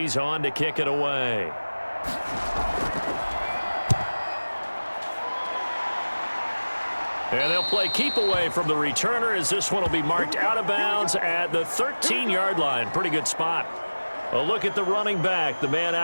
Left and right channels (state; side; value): inverted; both; correlation -1.00